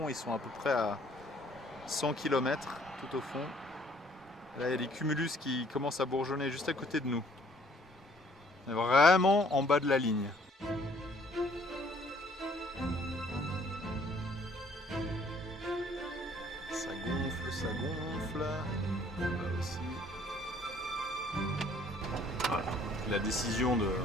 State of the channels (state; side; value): normal; both; correlation 0.60